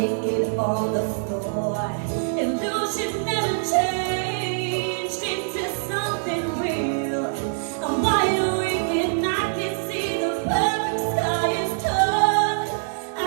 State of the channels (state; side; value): silent; left; 62 dB below the other